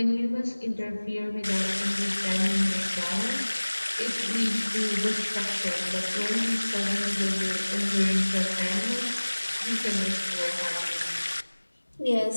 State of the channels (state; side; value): inverted; both; correlation -1.00